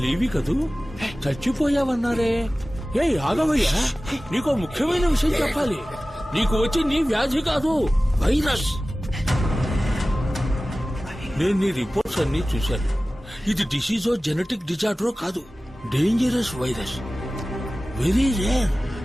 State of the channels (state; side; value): normal; both; correlation 0.96